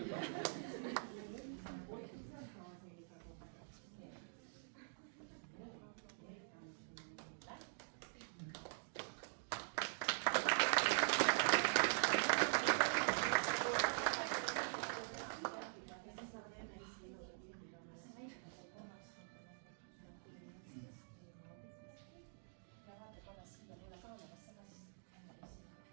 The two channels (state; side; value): silent; left; digital silence